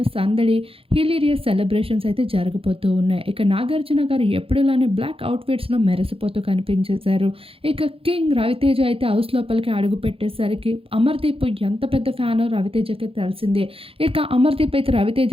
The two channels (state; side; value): late; left; 0.27 ms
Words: సందడి, హిలీరియస్ సెలబ్రేషన్స్ అయితే జరగబోతూ ఉన్నాయి. ఇక నాగార్జున గారు ఎప్పుడులానే బ్లాక్ అవుట్‌ఫిట్స్‌లో మెరిసిపోతూ కనిపించేశారు. ఇక కింగ్ రవితేజ అయితే హౌస్ లోపలికి అడుగుపెట్టేసరికి అమర్‌దీప్ ఎంత పెద్ద ఫ్యానో రవితేజకి తెలిసిందే. ఇక అమర్‌దీప్ అయితే